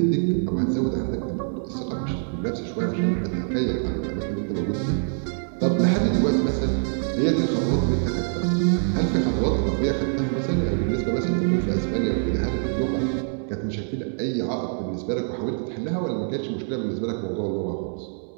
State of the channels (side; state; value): left; silent; digital silence